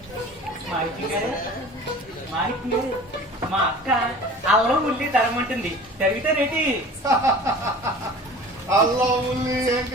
మాణిక్యం గారు మా అక్క అల్లం ఉల్లి తరమంటుంది, తరిగితే రేటి. అల్లా ఉల్లి ఏం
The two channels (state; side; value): normal; both; correlation 0.42